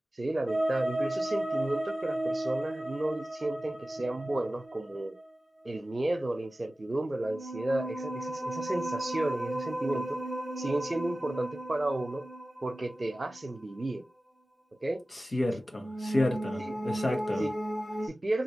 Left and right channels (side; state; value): both; normal; correlation 0.96